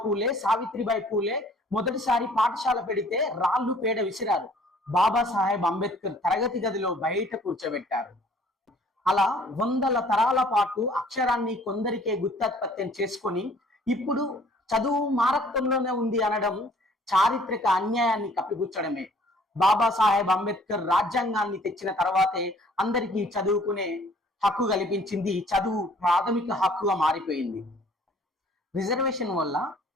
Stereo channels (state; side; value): normal; both; correlation 0.56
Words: పూలే, సావిత్రిబాయి పూలే మొదటిసారి పాఠశాల పెడితే రాళ్ళు పేడ విసిరారు. బాబాసాహెబ్ అంబేద్కర్ తరగతి గదిలో బయట కూర్చోబెట్టారు. అలా వందల తరాల పాటు అక్షరాన్ని కొందరికే గుత్తాత్పత్యం చేసుకొని ఇప్పుడు చదువు మా రక్తంలోనే ఉంది అనడం చారిత్రక అన్యాయాన్ని కప్పిపుచ్చడమే. బాబాసాహెబ్ అంబేద్కర్ రాజ్యాంగాన్ని తెచ్చిన తర్వాతే అందరికీ చదువుకునే హక్కు కల్పించింది. చదువు ప్రాథమిక హక్కుగా మారిపోయింది. రిజర్వేషన్ వల్ల